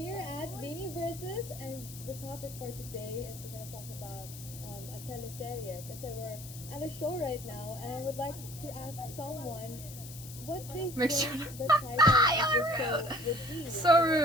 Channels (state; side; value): noise; left; hiss, 14 dB below the sound